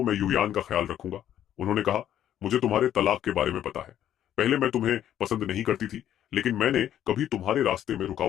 मैं युयान का ख्याल रखूंगा। उन्होंने कहा, मुझे तुम्हारे तलाक के बारे में पता है। पहले मैं तुम्हें पसंद नहीं करती थी, लेकिन मैंने कभी तुम्हारे रास्ते में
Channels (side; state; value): right; quieter; 11.0 dB